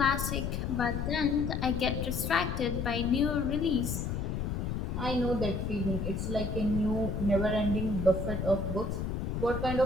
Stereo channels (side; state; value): left; noise; rumble, 2 dB below the sound